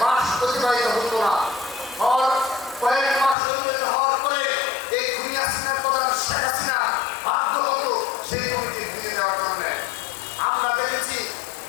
মাস অতিবাহিত হতো না, কয়েক মাস অতিবাহিত হওয়ার পরে এই খুনি হাসিনার প্রধান শেখ হাসিনা বাধ্য হতো সেই কমিটি ভেঙে দেওয়ার জন্য। আমরা দেখেছি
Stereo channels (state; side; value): drops out; right; at 3.4 s